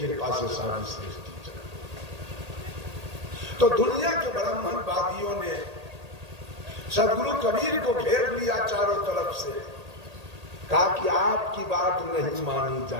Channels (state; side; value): late; left; 1.8 ms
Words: से सारी सृष्टि चल। तो दुनिया के ब्राह्मणवादियों ने सदगुरु कबीर को घेर लिया चारों तरफ से, कहा कि आपकी बात नहीं मानी